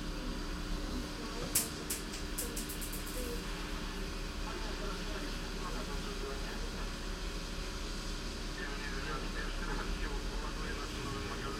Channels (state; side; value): identical; both; correlation 1.00